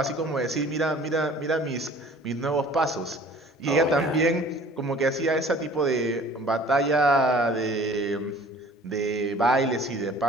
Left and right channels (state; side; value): normal; both; correlation 0.49